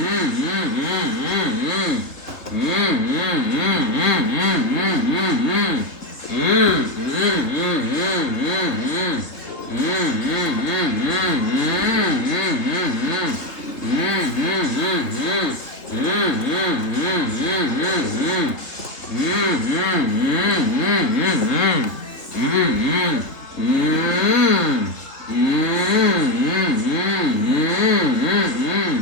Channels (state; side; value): late; right; 3.1 ms